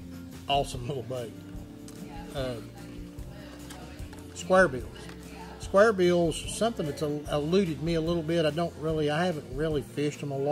Awesome little bait. Square bills. Square bills, something that's eluded me a little bit. I haven't really fished them a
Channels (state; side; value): identical; both; correlation 1.00